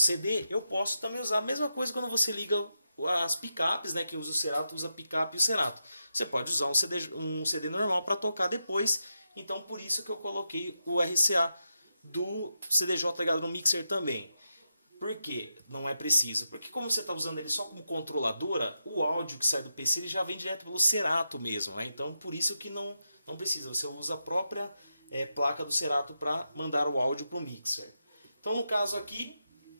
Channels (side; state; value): both; inverted; correlation -0.87